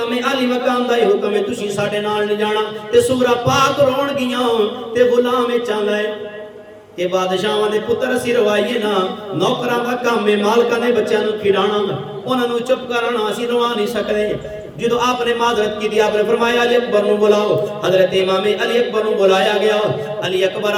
अली मकाम दा हुक्म है, तुसीं साडे नाल नहीं जाना, ते सुगरा पाक रोण गियां ते गुलाम चाहता है कि बादशाहां दे पुत्र असीं रवाइए ना, नौकरां दा काम है मालकां दे बच्चों नु खिलाना, उन्हां नु चुप कराना, असीं रवा नहीं सकदे। जो आपने माजरत की थी, आपने फरमाया अली अकबर नु बुलाओ। हजरत इमाम अली अकबर नु बुलाया गया। अली अकबर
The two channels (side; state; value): both; identical; correlation 1.00